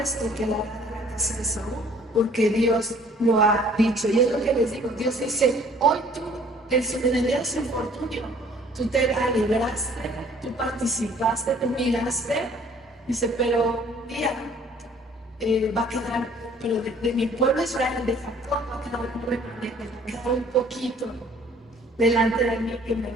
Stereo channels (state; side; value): normal; both; correlation 0.56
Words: quedará de la casa de Saúl, porque Dios lo ha dicho. Y es lo que les digo, Dios dice, hoy tú, en el día de su infortunio, tú te alegraste, tú participaste, tú miraste, dice, pero un día va a quedar, pero de mi pueblo Israel, de Jacob, va a quedar un remanente, va a quedar un poquito delante de mí que me